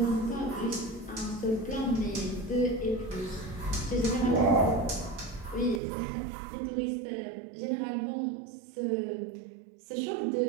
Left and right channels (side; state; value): left; drops out; at 5.8 s